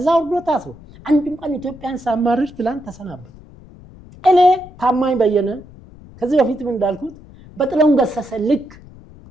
ወርዶ ታስሮ አንድም ቀን ኢትዮጵያን ሳማርር ትላንት ተሰናበት። እኔ ታማኝ በየነ ከዚህ በፊትም እንዳልኩት በጥላሁን ገሰሰ ልክ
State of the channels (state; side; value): noise; left; rumble, 21 dB below the sound